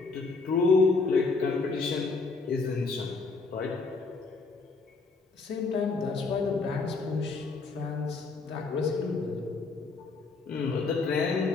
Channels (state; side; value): quieter; right; 4.1 dB